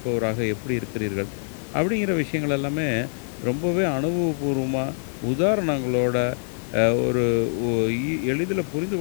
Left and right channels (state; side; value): silent; right; digital silence